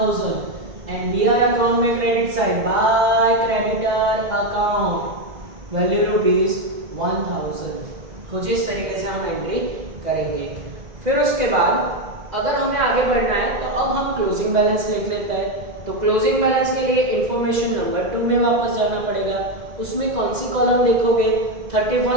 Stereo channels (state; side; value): late; left; 2.0 ms